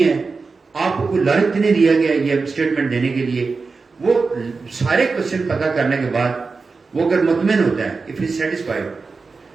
ہے, آپ کو کوئی لالچ نہیں دیا گیا یہ اسٹیٹمنٹ دینے کے لیے. وہ سارے کوشچن پتا کرنے کے بعد وہ اگر مطمئن ہوتا ہے, if he is satisfied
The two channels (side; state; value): left; quieter; 4.4 dB